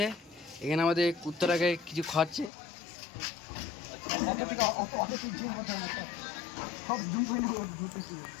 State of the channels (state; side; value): drops out; right; at 2.5 s